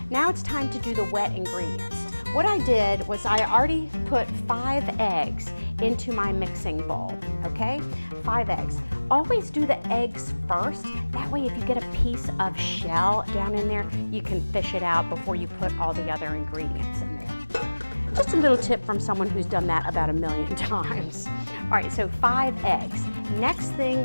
Now it's time to do the wet ingredients. What I did was I already put 5 eggs into my mixing bowl, okay? 5 eggs. Always do the eggs first. That way if you get a piece of shell down in there, you can fish it out before you put all the other ingredients in there. Just a little tip from someone who's done that about 1,000,000 times. All right, so 5 eggs. Next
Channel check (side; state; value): both; inverted; correlation -1.00